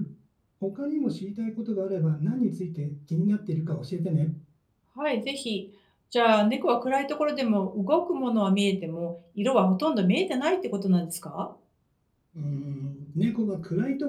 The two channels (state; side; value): identical; both; correlation 1.00